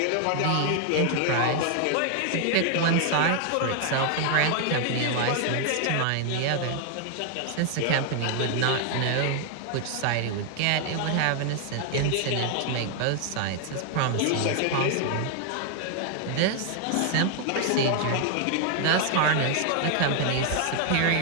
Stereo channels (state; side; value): different; both; correlation 0.00